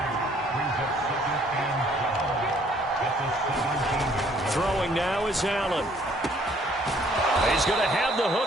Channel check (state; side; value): normal; both; correlation 0.62